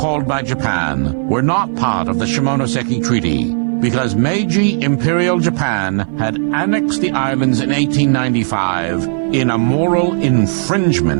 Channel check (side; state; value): left; silent; 57 dB below the other